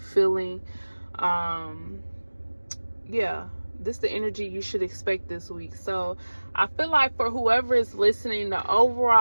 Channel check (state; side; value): inverted; both; correlation -1.00